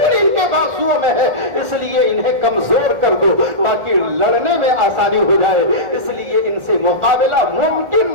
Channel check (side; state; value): left; late; 1.7 ms